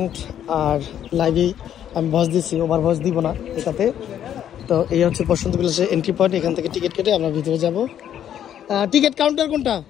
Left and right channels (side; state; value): right; quieter; 10.2 dB